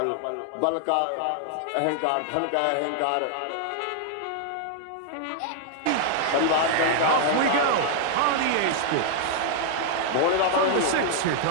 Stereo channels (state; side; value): different; both; correlation -0.01